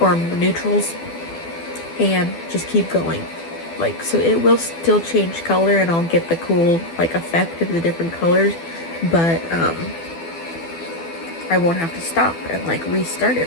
or neutrals, and just keep going. Like, so it will still change color, and I'll get the cool like effect of the different colors, but I won't have to stop and like restart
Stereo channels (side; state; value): right; late; 12 ms